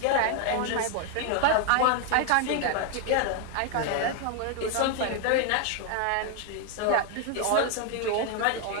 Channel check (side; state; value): both; different; correlation 0.00